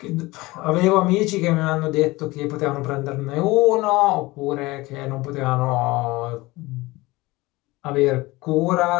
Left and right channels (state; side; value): quieter; right; 21.0 dB